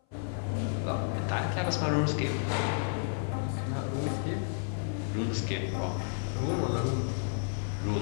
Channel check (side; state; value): right; silent; 57 dB below the other